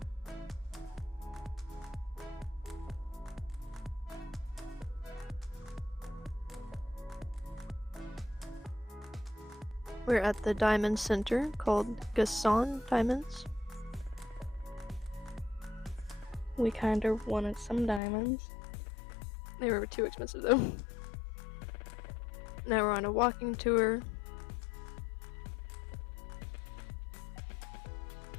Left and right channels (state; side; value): drops out; right; at 18.0 s